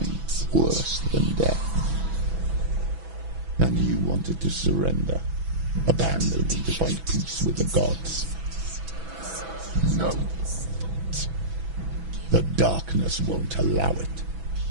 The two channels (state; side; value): late; left; 6.1 ms